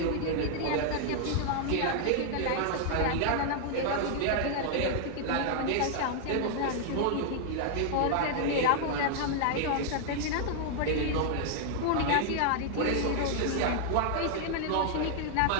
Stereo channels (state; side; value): different; both; correlation 0.00